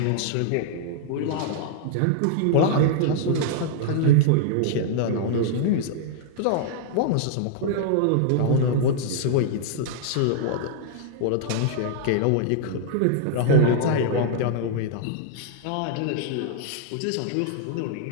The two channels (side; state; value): both; different; correlation -0.01